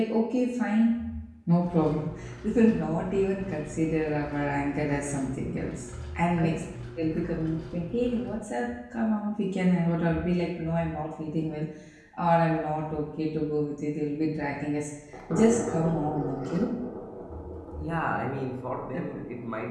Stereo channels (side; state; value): both; identical; correlation 1.00